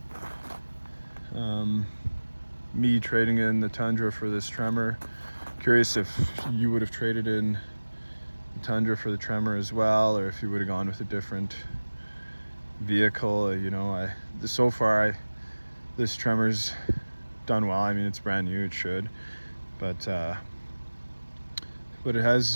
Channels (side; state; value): both; inverted; correlation -1.00